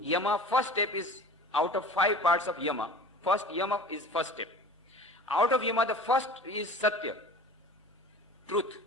first step is out of 5 parts of yama. First yama is first step. Out of yama, the first is satya, truth.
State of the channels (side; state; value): both; normal; correlation 0.40